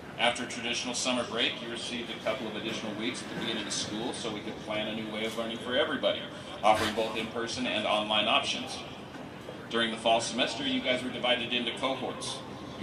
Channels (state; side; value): identical; both; correlation 1.00